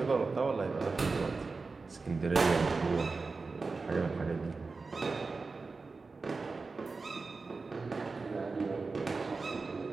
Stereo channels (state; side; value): quieter; left; 4.1 dB